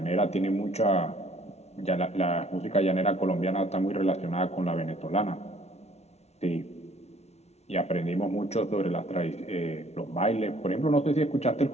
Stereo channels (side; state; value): right; late; 0.31 ms